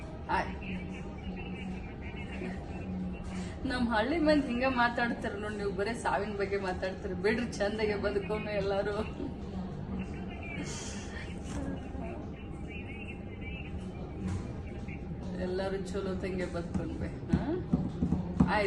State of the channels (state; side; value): identical; both; correlation 1.00